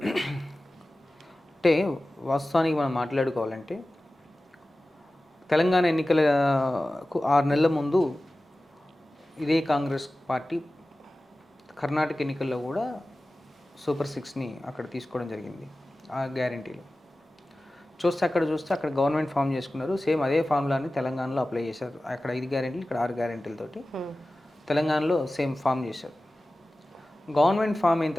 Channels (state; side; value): normal; both; correlation 0.96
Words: అంటే వాస్తవానికి మనం మాట్లాడుకోవాలంటే తెలంగాణ ఎన్నికలకు 6 నెలల ముందు ఇదే కాంగ్రెస్ పార్టీ కర్ణాటక ఎన్నికల్లో కూడా సూపర్ 6ని అక్కడ తీసుకోవడం జరిగింది. ఆ గ్యారెంటీలు చూస్తే అక్కడ గవర్నమెంట్ ఫామ్ చేసుకున్నారు. సేమ్ అదే ఫార్ములాని తెలంగాణలో అప్లై చేశారు. అక్కడ 5 గ్యారెంటీలు, ఇక్కడ 6 గ్యారెంటీలతోటి తెలంగాణలో సేమ్ ఫామ్ చేశారు. గవర్నమెంట్ ఫామ్ అయిన